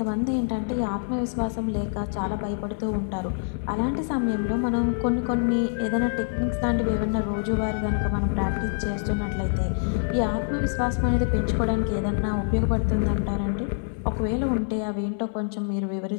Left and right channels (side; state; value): right; silent; 58 dB below the other